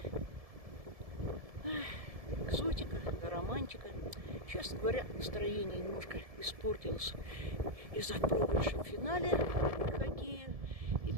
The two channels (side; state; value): left; late; 1.7 ms